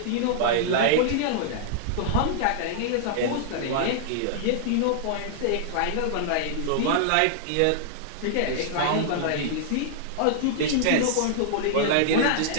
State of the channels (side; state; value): both; different; correlation -0.01